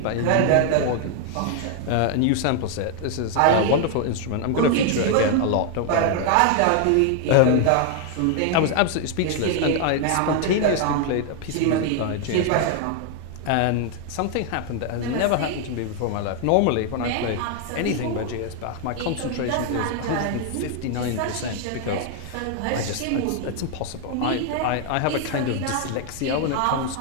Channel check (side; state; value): both; different; correlation 0.00